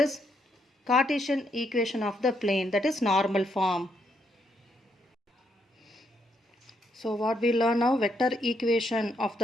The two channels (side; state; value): both; normal; correlation 0.76